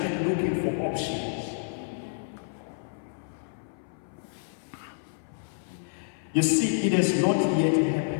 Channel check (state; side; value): silent; right; 59 dB below the other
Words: looking for options. You see, it has not yet